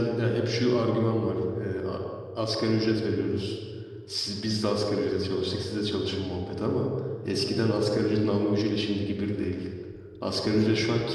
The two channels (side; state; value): both; identical; correlation 1.00